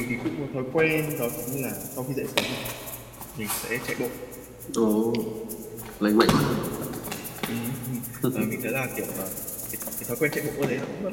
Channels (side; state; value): both; identical; correlation 1.00